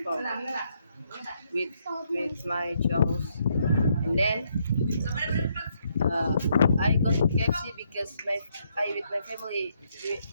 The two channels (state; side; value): inverted; both; correlation -0.74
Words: with my chums. And then uh, I got KFC because I with my family we